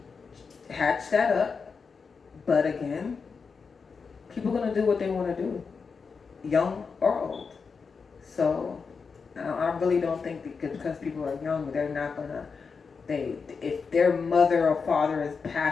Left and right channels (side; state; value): right; quieter; 5.3 dB